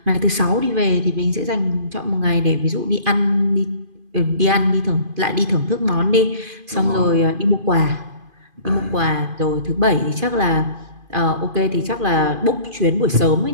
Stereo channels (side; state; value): left; late; 2.5 ms